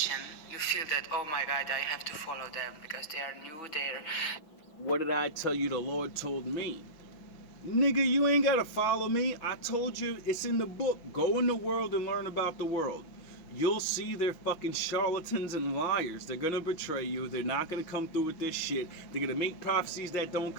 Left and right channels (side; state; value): right; late; 6.3 ms